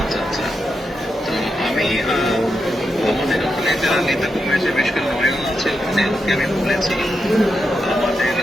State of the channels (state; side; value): normal; both; correlation 0.86